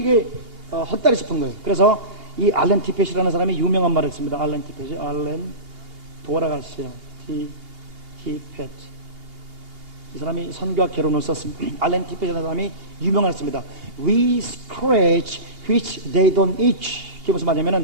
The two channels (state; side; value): late; left; 2.8 ms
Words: 헛다리 싶은 거예요. 그래서 이 알렌 티펫이라는 사람이 유명한 말을 했습니다. 알렌 티펫이 돌아가세요. 티펫. 이 사람이 선교와 개론을 썼습니다. 알렌 티펫이라는 사람이 유명했습니다. We scratch which they don't itch. 그게 무슨